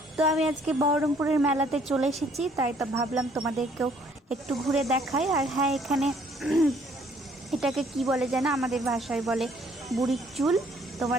তো আমি আজকে বহরমপুরের মেলাতে চলে এসেছি, তাই তো ভাবলাম তোমাদেরকেও একটু ঘুরে দেখাই। আর হ্যাঁ, এখানে এটাকে কি বলে যেন, আমাদের ভাষায় বলে বুড়ির চুল,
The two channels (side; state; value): both; normal; correlation 0.62